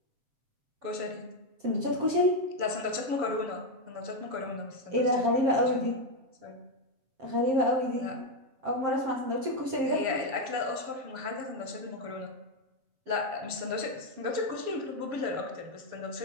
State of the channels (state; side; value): late; left; 7.5 ms